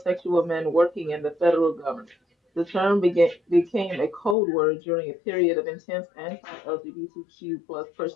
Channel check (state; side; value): drops out; right; at 4.4 s